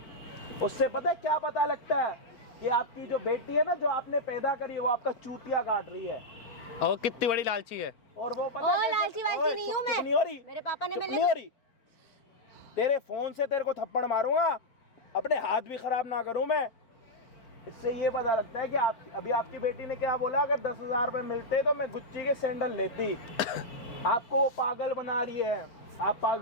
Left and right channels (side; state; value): right; late; 4.4 ms